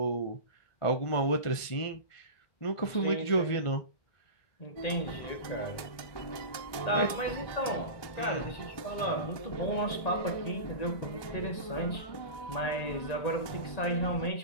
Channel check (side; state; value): right; late; 1.2 ms